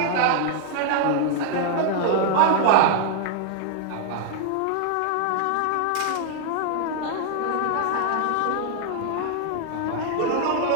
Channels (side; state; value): both; different; correlation 0.00